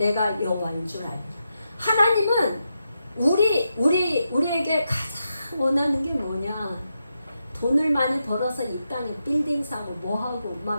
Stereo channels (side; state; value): both; inverted; correlation -0.86